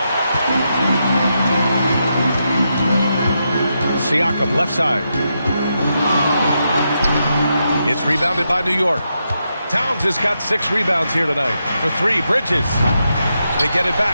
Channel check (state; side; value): inverted; both; correlation -0.84